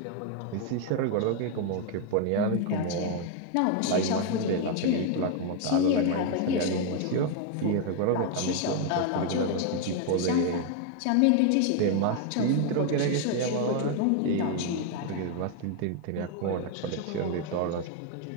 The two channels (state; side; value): different; both; correlation 0.01